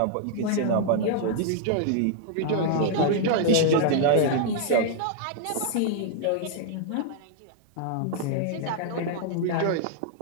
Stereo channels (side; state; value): both; different; correlation -0.01